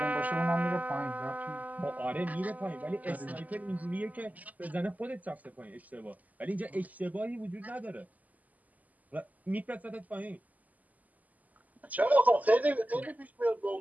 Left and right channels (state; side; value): late; left; 0.078 ms